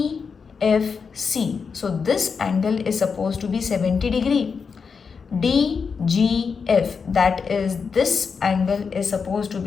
so this angle is supposed to be 70 degree. DGF, that is this angle is supposed to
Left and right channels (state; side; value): quieter; right; 5.6 dB